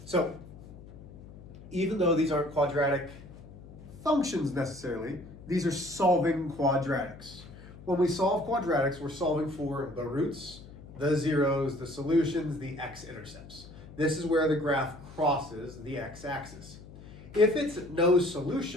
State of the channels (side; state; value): left; noise; hum, 17 dB below the sound